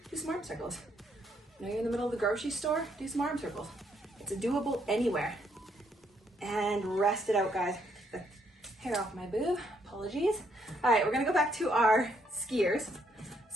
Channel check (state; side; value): normal; both; correlation 0.72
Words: do some arm circles. You know, you're in the middle of the grocery store, do some arm circles. It's doable anywhere. And rest it out, guys. The hair off my boob, apologies. All right, we're gonna go back to our skiers.